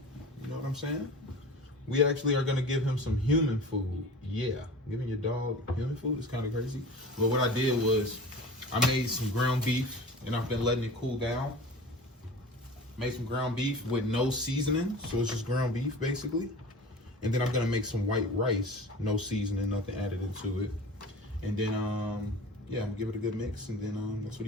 You know what I'm saying? We actually are going to give him some human food. Yeah, giving your dog human food is kind of crazy. But what I did was I made some ground beef and I've been letting it cool down. Made some ground beef with no seasoning. So it's just ground beef basically. And then I'm going to make some white rice, no seasoning, nothing added into it. And then, yeah, I'm going to give it a good mix and then that's what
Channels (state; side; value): normal; both; correlation 0.38